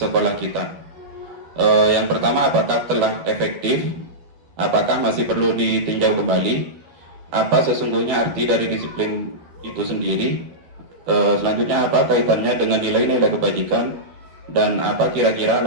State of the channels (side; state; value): left; late; 12 ms